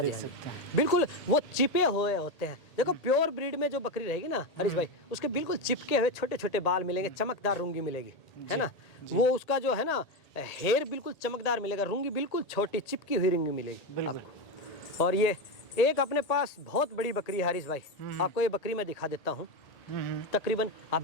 जी, देख हाँ जी, सकते हैं। बिल्कुल वो चिपे हुए होते हैं। देखो प्योर ब्रीड में जो बकरी रहेगी ना हरीश भाई, उसके बिल्कुल चिपके हुए छोटे छोटे बाल मिलेंगे, चमकदार रूंगी मिलेगी, है ना। वो उसका जो है ना हेयर बिल्कुल चमकदार मिलेगा, रूंगी बिल्कुल छोटी चिपकी हुई रूंगी मिलेगी आपको। और ये एक अपने पास बहुत बड़ी बकरी है हरीश भाई, आपको ये बकरी मैं दिखा देता हूँ। तकरीबन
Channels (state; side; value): late; right; 1.8 ms